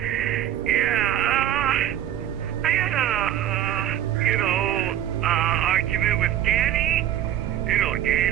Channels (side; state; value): left; quieter; 11.3 dB